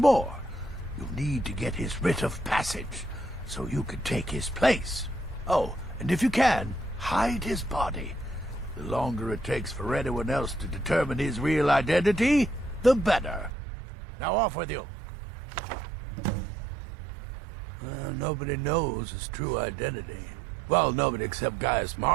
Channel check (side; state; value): left; drops out; at 13.5 s